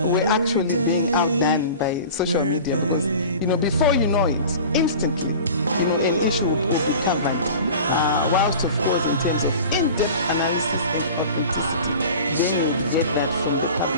we're actually being outdone by social media, because before you know it, instantly an issue will be covered, whilst of course in terms of in-depth analysis and authenticity, then you would get that from the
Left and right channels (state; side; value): inverted; both; correlation -0.39